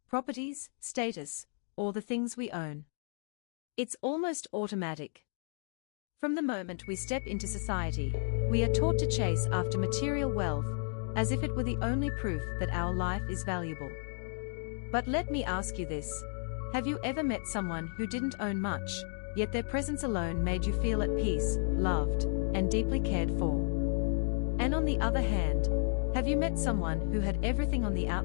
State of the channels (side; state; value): right; silent; 56 dB below the other